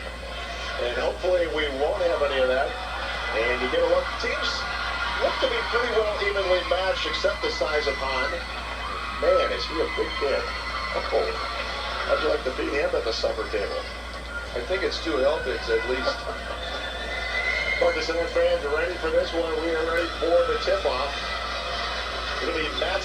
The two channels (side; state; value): both; identical; correlation 1.00